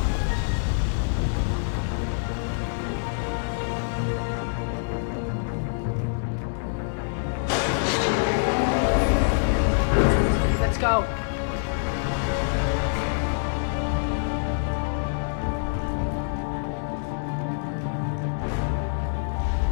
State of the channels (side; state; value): right; silent; digital silence